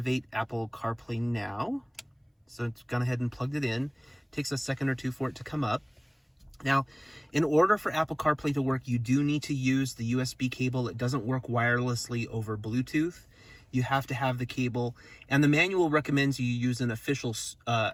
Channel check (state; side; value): identical; both; correlation 1.00